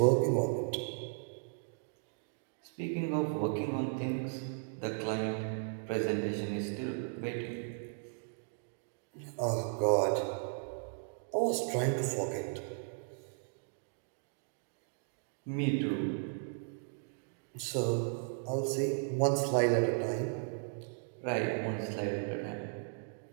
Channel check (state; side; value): silent; left; digital silence